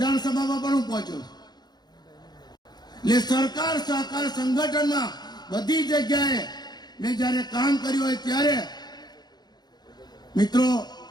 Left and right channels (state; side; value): late; right; 0.20 ms